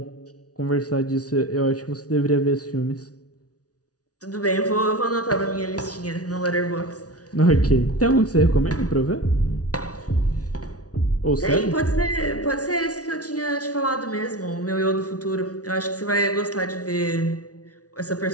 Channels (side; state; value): right; late; 0.68 ms